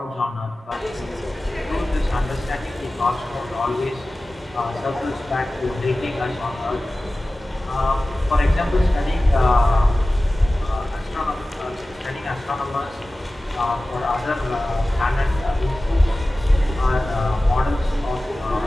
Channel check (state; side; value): normal; both; correlation 0.96